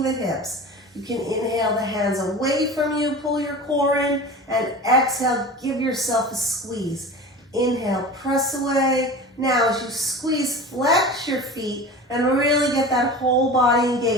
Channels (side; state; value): both; normal; correlation 0.34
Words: the hips. You can inhale the hands away from you, pull your core in, and exhale, give yourself a squeeze. Inhale, press away. Now as you squeeze, flex your feet and really get that whole body